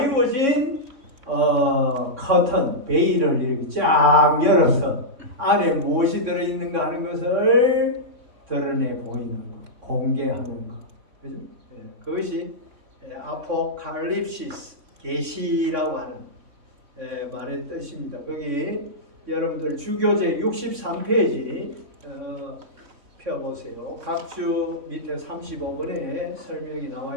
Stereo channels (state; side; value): late; left; 3.6 ms